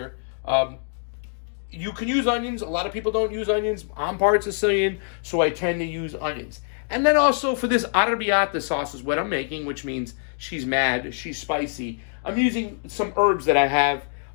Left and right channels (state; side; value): silent; right; 62 dB below the other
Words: You can use onions. A lot of people don't use onions. I'm part Sicilian, so I tend to use onions. And then also for this Arrabiata sauce is what I'm making, which means she's mad, she's spicy. I'm using some herbs that I have